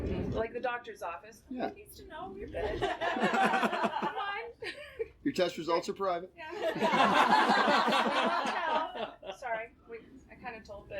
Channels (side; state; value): both; identical; correlation 1.00